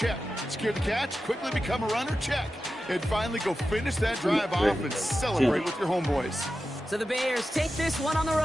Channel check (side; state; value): both; normal; correlation 0.92